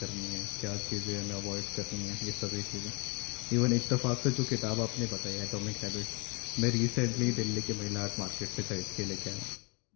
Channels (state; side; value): quieter; right; 30.0 dB